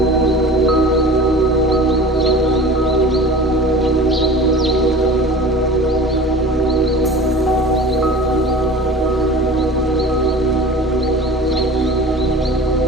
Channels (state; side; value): normal; both; correlation 0.38